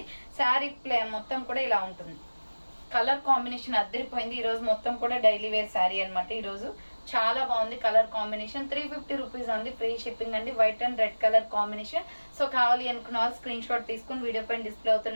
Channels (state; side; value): inverted; both; correlation -1.00